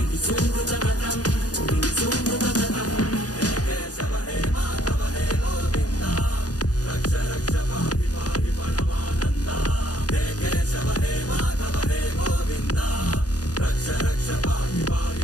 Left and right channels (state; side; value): late; right; 0.68 ms